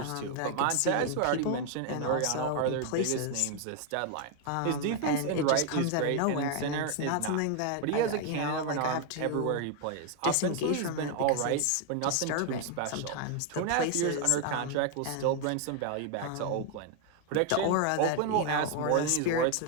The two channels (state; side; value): different; both; correlation 0.01